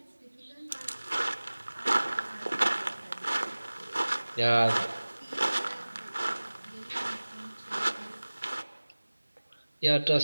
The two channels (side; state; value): both; inverted; correlation -1.00